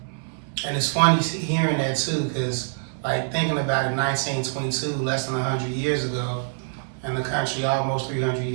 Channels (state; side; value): silent; left; 62 dB below the other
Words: and it's funny hearing that too, because like thinking about it, 1922, less than 100 years ago, and the country almost 300